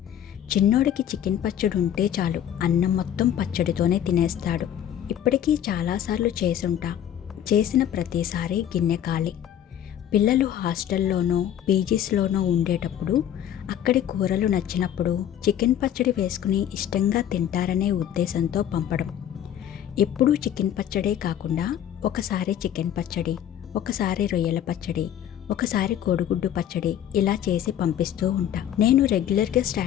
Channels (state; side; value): quieter; right; 10.4 dB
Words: చిన్నోడికి చికెన్ పచ్చడి ఉంటే చాలు, అన్నం మొత్తం పచ్చడితోనే తినేస్తాడు. ఇప్పటికీ చాలాసార్లు చేసుంటా. చేసిన ప్రతిసారి గిన్నె ఖాళీ. పిల్లలు హాస్టల్లోనో పీజీస్లోనో ఉండేటప్పుడు అక్కడి కూరలు నచ్చినప్పుడు చికెన్ పచ్చడి వేసుకుని ఇష్టంగా తింటారనే ఉద్దేశంతో పంపడం. ఎప్పుడూ చికెన్ పచ్చడే కాకుండా ఒకసారి చికెన్ పచ్చడి, ఒకసారి రొయ్యల పచ్చడి, ఒకసారి కోడిగుడ్డు పచ్చడి ఇలా చేసి పంపిస్తూ ఉంటా. నేను రెగ్యులర్గా